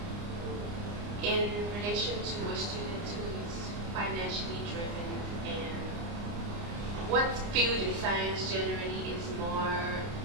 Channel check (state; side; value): late; left; 29 ms